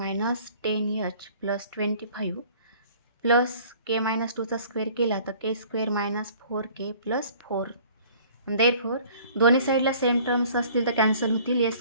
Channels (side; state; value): both; inverted; correlation -0.51